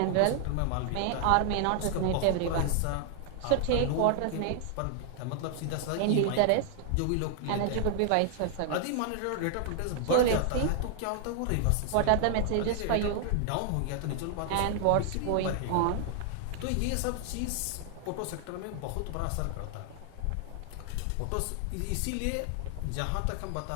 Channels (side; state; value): both; different; correlation 0.00